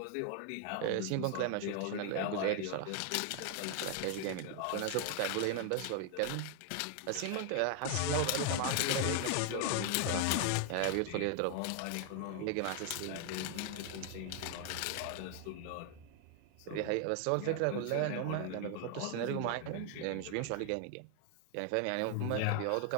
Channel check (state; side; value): different; both; correlation 0.00